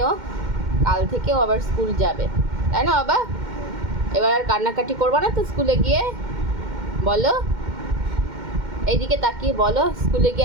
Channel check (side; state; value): left; late; 2.1 ms